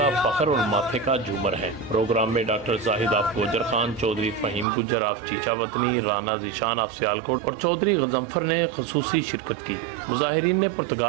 فخر اور ماتھے کا جھومر ہے۔ پروگرام میں doctor Zahid of Gujar Khan, Chaudhry Faheem Gujjar of Chichawatni, Rana Zeeshan of Sialkot اور چودھری غضنفر نے خصوصی شرکت کی۔ مظاہرین نے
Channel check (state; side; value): drops out; left; at 4.7 s